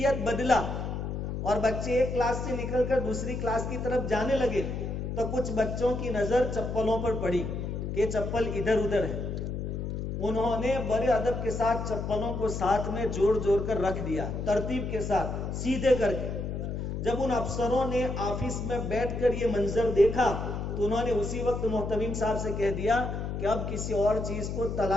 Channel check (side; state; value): left; noise; hum, 4 dB below the sound